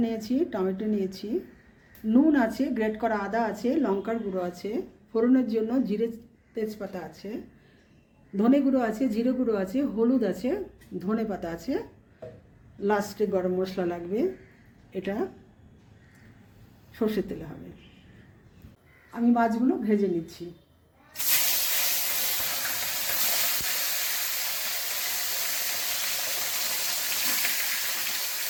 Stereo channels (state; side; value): identical; both; correlation 1.00